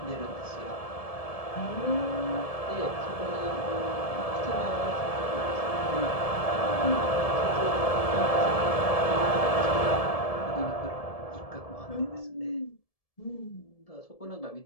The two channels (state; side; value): late; right; 1.7 ms